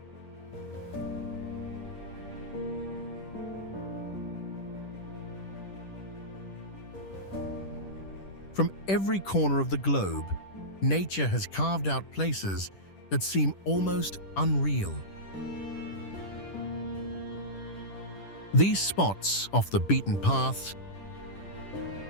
From every corner of the globe, nature has carved out places that seem almost unreal. These spots off the beaten paths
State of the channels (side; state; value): right; late; 10 ms